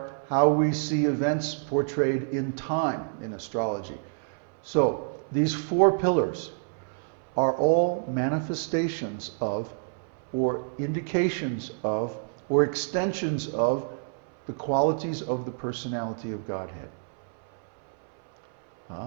how we see events portrayed in time in astrology. So these 4 pillars are all manifestations of, or indications of, or extensions of the qualities of the personality of Godhead.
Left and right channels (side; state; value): left; silent; 59 dB below the other